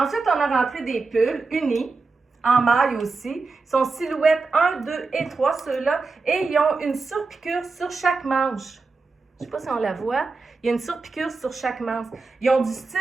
on a rentré des pulls unis, en maille aussi. Ils sont silhouettes 1, 2 et 3, ceux-là. Et ils ont une surpiqûre sur chaque manche. Je ne sais pas si on la voit. Il y a une surpiqûre sur chaque manche. Ils ont du style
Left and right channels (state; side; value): quieter; left; 4.1 dB